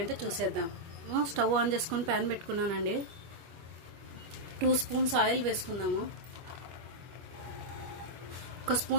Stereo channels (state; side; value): late; left; 25 ms